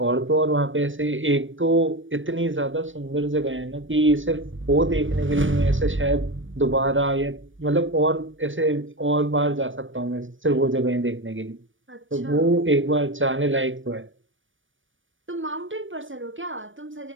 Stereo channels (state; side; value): late; left; 0.57 ms